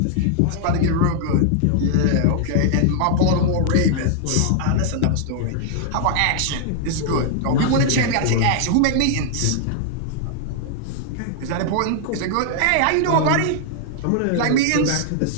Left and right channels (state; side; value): different; both; correlation 0.00